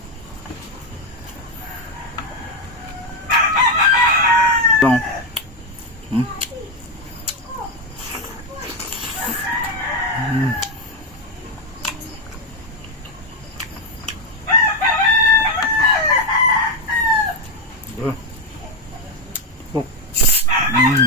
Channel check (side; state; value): both; normal; correlation 0.07